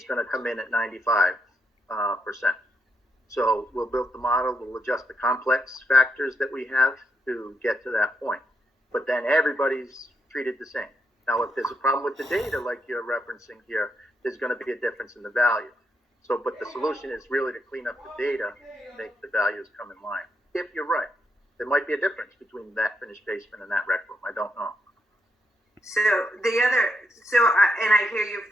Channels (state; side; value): normal; both; correlation 0.80